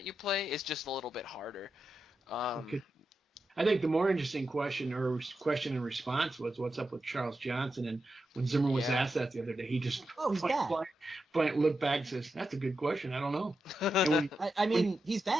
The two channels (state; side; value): normal; both; correlation 0.88